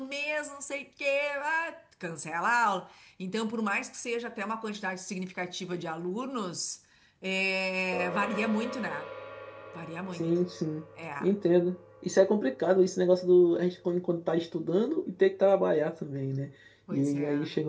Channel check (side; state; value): both; identical; correlation 1.00